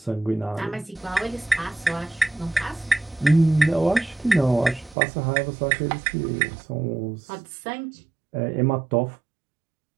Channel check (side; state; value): left; drops out; at 5.0 s